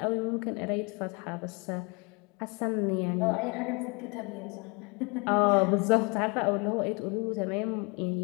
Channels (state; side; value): quieter; right; 30.7 dB